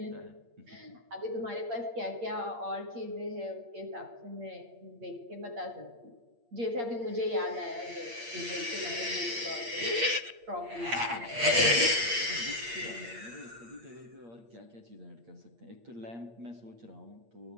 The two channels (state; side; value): late; left; 8.6 ms